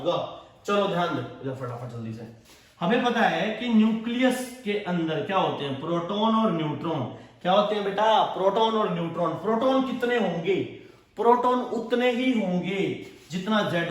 चलो ध्यान दो फटाफट जल्दी से। हमें पता है कि न्यूक्लियस के अंदर क्या होते हैं? प्रोटॉन और न्यूट्रॉन। क्या होते हैं बेटा? प्रोटॉन और न्यूट्रॉन। प्रोटॉन कितने होंगे? प्रोटॉन उतने ही होंगे जितना Z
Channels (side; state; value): both; identical; correlation 1.00